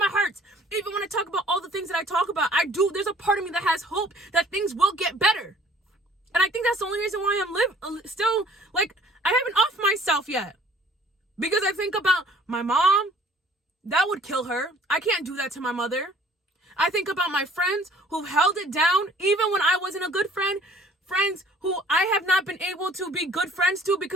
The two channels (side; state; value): both; normal; correlation 0.54